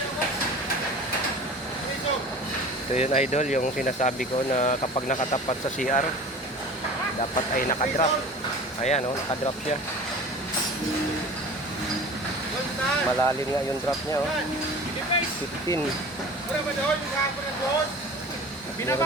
So yun idol, yung sinasabi ko na kapag nakatapat sa CR, dapat ay nakadrop. Ayan o, nakadrop siya. Malalim nga yung drop niya o. 15. Meron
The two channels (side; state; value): both; normal; correlation 0.39